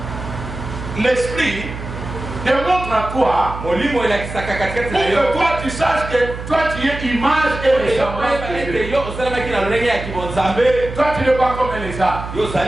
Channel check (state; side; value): noise; right; hum, 9 dB below the sound